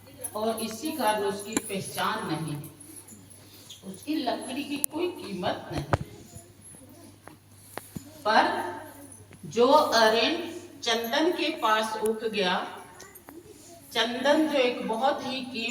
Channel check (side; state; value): both; identical; correlation 1.00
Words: और इसी कारण उसकी पहचान नहीं है, उसकी लकड़ी की कोई कीमत नहीं। पर जो अरेंड चंदन के पास उग गया, चंदन जो एक बहुत ही